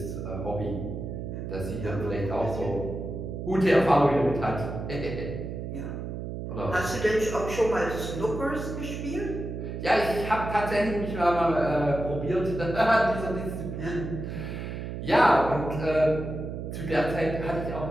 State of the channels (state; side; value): noise; right; hum, 6 dB below the sound